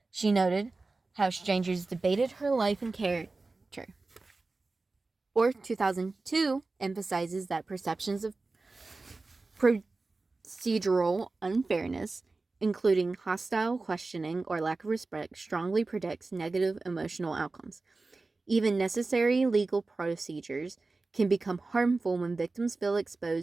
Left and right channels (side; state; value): left; quieter; 3.6 dB